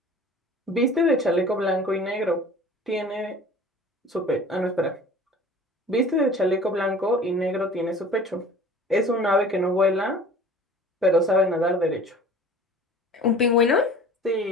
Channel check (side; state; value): both; normal; correlation 0.44